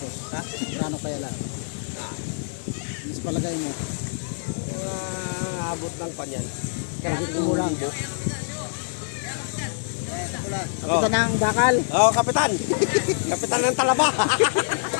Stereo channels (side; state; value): right; silent; 62 dB below the other